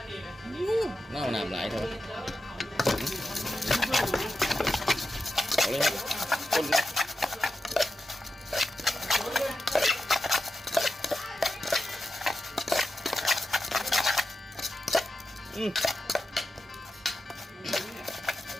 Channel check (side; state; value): both; normal; correlation 0.91